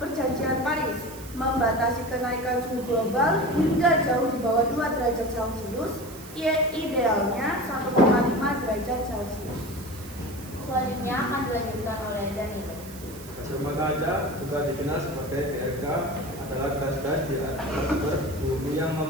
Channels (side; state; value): right; noise; hiss, 17 dB below the sound